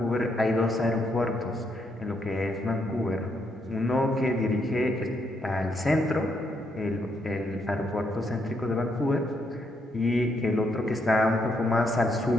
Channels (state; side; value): normal; both; correlation 0.76